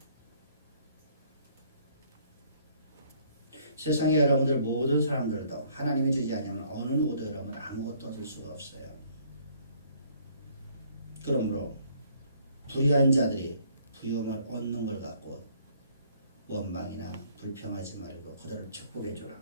세상에 여러분들 모든 사람들도 하나님이 주지 않으면 어느 누구도 여러분 아무것도 얻을 수가 없어요. 그러므로 불의한 자들이 부유함을 얻는 걸 갖고 원망이나 불평하지 말고 그들을 축복해 주라.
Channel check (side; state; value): both; inverted; correlation -0.62